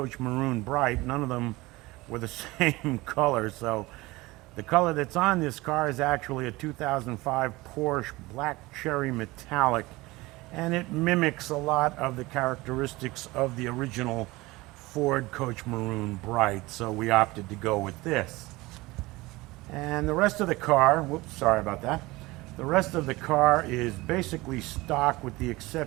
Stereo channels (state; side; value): quieter; left; 21.0 dB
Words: Maroon Bright, none of them were the same color. So the color that's on this car is actually a 2005 Porsche Black Cherry Metallic, and it mimics a lot of the characteristics of the original Ford Coach Maroon Bright, so we opted to go with this. And the rest of the car, whoops, sorry about that. The rest of the car is basically stock with the